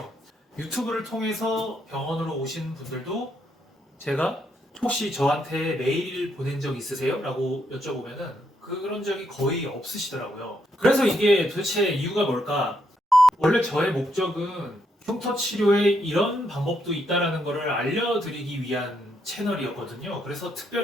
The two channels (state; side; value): normal; both; correlation 0.77